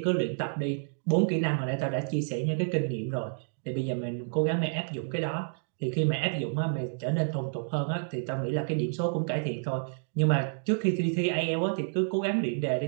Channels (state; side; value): silent; left; digital silence